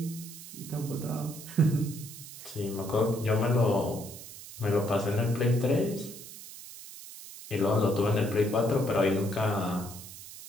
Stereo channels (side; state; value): right; noise; hiss, 14 dB below the sound